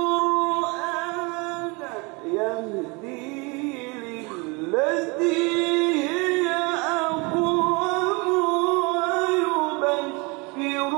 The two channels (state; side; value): quieter; left; 28.5 dB